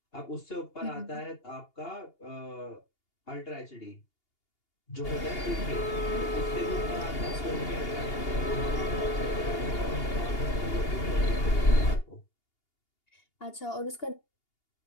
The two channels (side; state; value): right; late; 2.8 ms